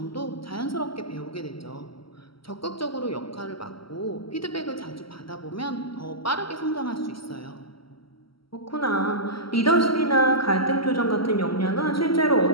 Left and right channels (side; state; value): right; late; 0.75 ms